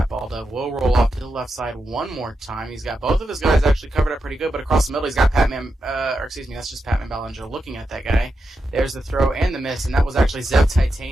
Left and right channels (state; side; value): normal; both; correlation 0.87